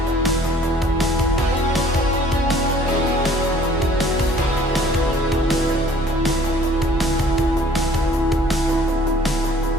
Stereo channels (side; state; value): both; normal; correlation 0.55